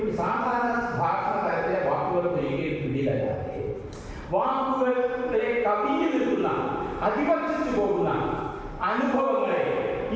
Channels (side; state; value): both; identical; correlation 1.00